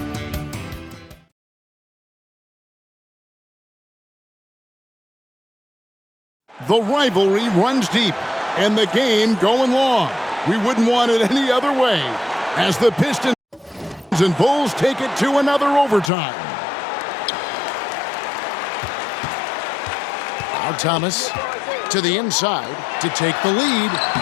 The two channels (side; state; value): right; drops out; at 16.1 s